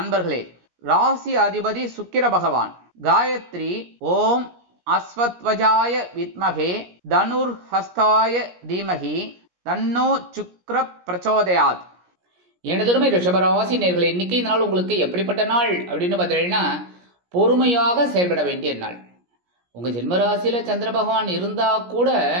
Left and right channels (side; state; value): left; late; 17 ms